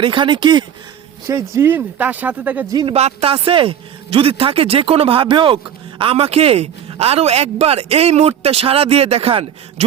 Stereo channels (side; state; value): left; quieter; 9.3 dB